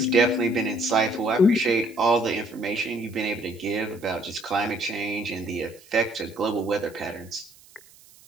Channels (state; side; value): noise; right; hiss, 25 dB below the sound